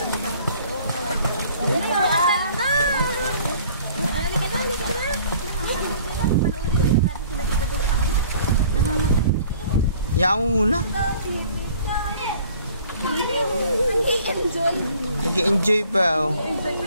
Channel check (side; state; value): both; inverted; correlation -0.53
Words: Yan mo muna. Nag-enjoy pa oh.